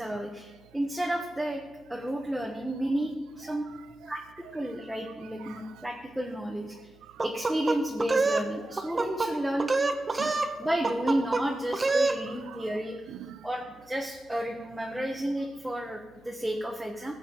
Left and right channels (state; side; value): noise; right; hum, 28 dB below the sound